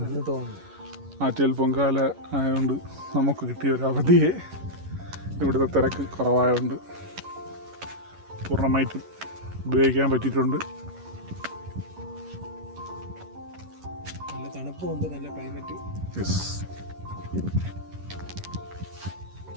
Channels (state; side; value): late; left; 11 ms